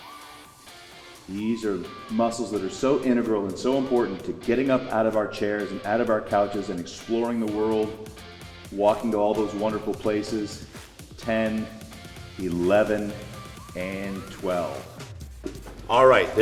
These are muscles that are so integral and so important to getting up out of our chairs and out of our couches and exploring the world, walking to all those wonderful places. 10, 11, and 12. All right,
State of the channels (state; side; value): identical; both; correlation 1.00